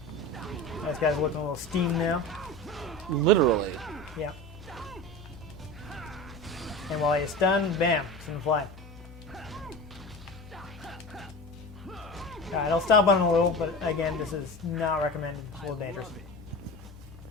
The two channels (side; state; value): both; normal; correlation 0.31